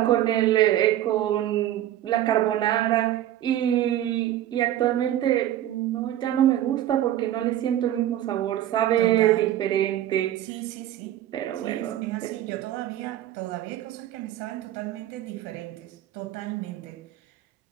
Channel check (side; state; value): left; quieter; 12.6 dB